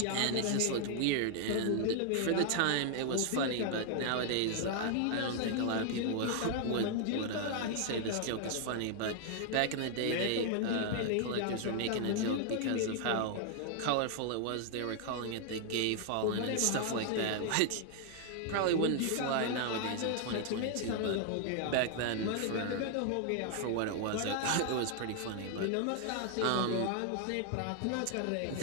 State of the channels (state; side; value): different; both; correlation 0.00